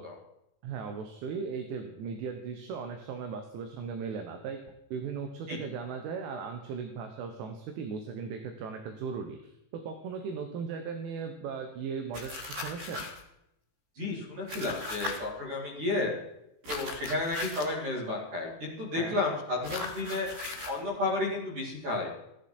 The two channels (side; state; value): left; late; 18 ms